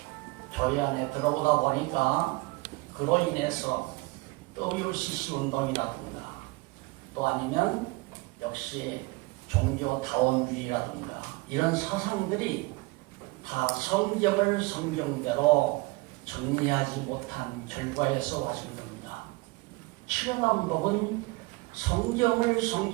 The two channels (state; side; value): quieter; left; 24.1 dB